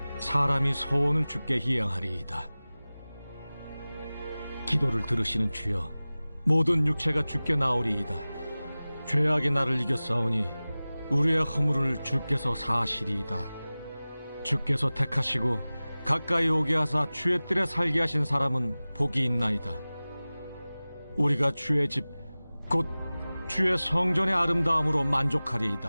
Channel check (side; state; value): both; inverted; correlation -0.98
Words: 사람이 소원을 주께 희양하리이다. 기도를 들으시는 주여, 모든 육체가 주께 나오리이다. 죄악의 나를 이겼사오니 우리의 허물을 주께서 사하시리이다. 주께서 택하시고 가까이 오게 하사 주의 뜰에 살게 하신 사람은 복이 있나이다. 우리가 주의 집 곧 주의 성전의 아름다움으로